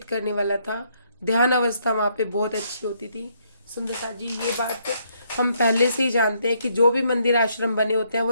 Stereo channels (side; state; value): both; inverted; correlation -0.72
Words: करने वाला था। ध्यान अवस्था वहाँ पे बहुत अच्छी होती थी। सुंदर साथ जी, ये बात हम पहले से ही जानते हैं कि जो भी मंदिर आश्रम बने होते हैं वो